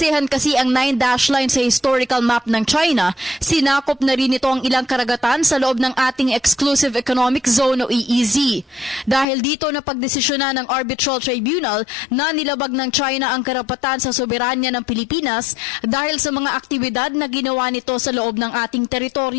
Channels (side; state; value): right; drops out; at 9.2 s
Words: kasi ang 9-dash line sa historical map ng China, sinakop na rin ito ang ilang karagatan sa loob ng ating Exclusive Economic Zone o EEZ. Dahil dito na pagdesisyonan ng Arbitral Tribunal na nilabag ng China ang karapatan sa soberanya ng Pilipinas dahil sa mga aktibidad na ginawa nito sa loob ng ating